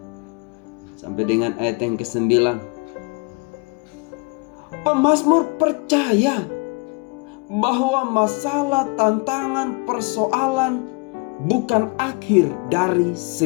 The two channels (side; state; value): right; quieter; 30.1 dB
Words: sampai dengan ayat yang ke-9. Pemazmur percaya bahwa masalah, tantangan, persoalan bukan akhir dari